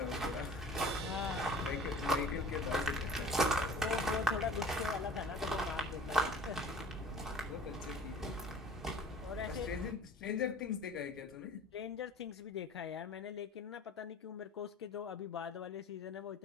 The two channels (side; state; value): both; normal; correlation 0.45